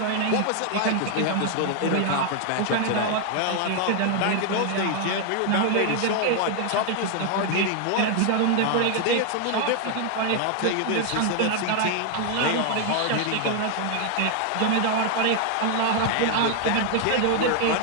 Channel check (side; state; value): both; different; correlation 0.00